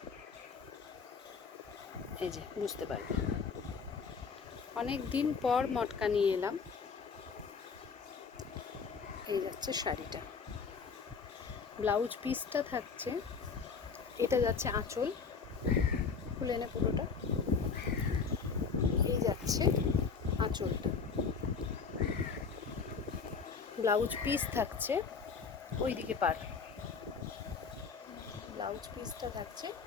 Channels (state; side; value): quieter; right; 5.5 dB